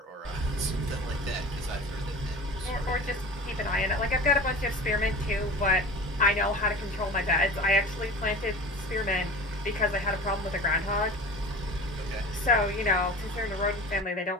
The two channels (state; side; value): normal; both; correlation 0.36